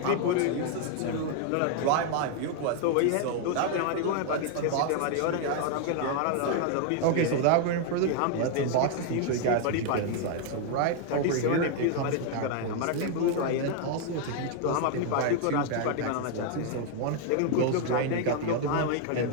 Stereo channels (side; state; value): both; different; correlation 0.00